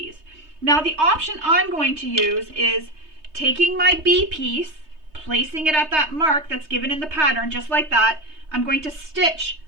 Now the option I'm going to use is taking my B piece, placing it at that mark that's given in the pattern, just like that. I'm going to stitch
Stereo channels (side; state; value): left; late; 3.2 ms